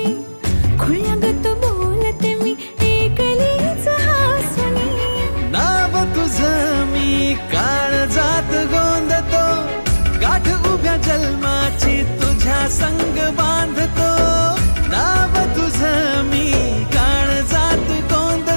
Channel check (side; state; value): both; inverted; correlation -1.00